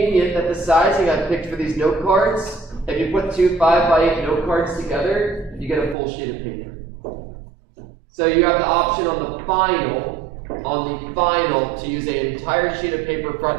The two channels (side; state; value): left; drops out; at 6.0 s